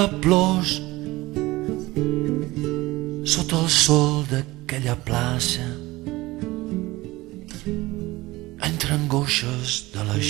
plors, sota el sol d'aquella plaça, entre angoixes de la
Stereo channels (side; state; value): left; quieter; 19.6 dB